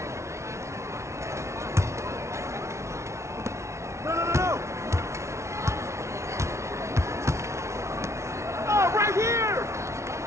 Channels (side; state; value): left; late; 0.13 ms